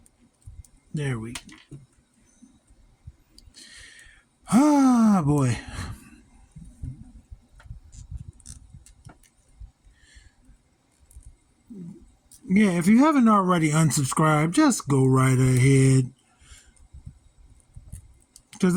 There we go. Ah, boy. Yeah, if you haven't already unsubscribed, just go right ahead. Because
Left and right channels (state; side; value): identical; both; correlation 1.00